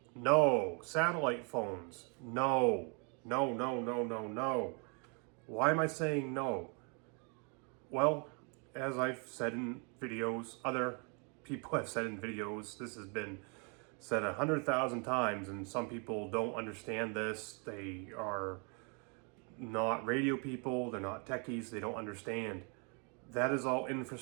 no. Satellite phones, no. No. Why am I saying no? Well, as I've said in videos, other people have said in videos, this has been said 100,000 times, and some people don't understand this. They are not radio people, they're not techies, they don't understand. That is all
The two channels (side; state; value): left; quieter; 36.0 dB